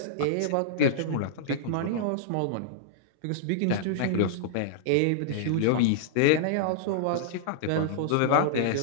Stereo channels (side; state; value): both; different; correlation -0.02